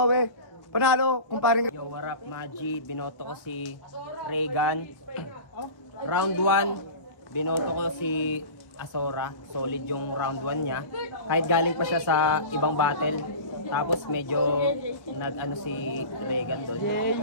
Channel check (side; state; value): both; inverted; correlation -0.34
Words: Panalo, kumparing. Yo, what up, Maji? Binoto ko si Regan. Round 1, binoto ko si Azora. Solid yung round 1 niya. Kahit galing pa siya sa ibang battle. Tapos medyo nag-ano si Regan doon.